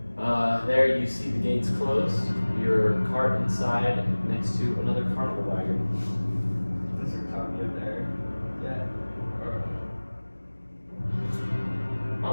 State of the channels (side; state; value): both; inverted; correlation -1.00